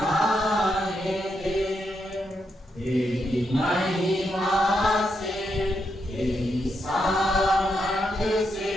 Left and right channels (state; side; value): normal; both; correlation 0.82